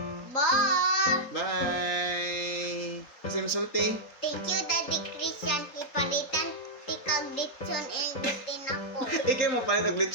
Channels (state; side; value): late; right; 3.7 ms